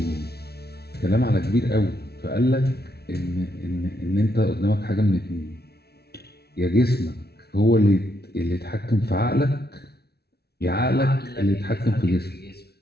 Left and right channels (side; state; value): right; late; 0.47 ms